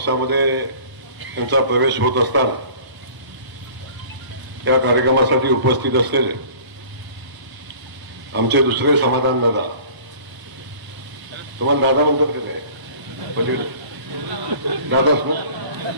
त्यांचा प्रवेश होत असताना या कार्यक्रमासाठी उपस्थित असलेले आमचे दुसरे समाधान दादा, तुम्हाला दादा म्हणतात की नाही? पलीकडे दादाच ना?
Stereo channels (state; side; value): late; left; 1.0 ms